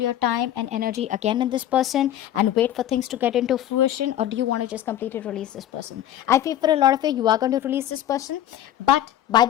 time and energy again in this person and wait for things to get into fruition, or do you want to just completely release this person? I feel for a lot of you are going to release this person, but by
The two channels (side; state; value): right; quieter; 11.9 dB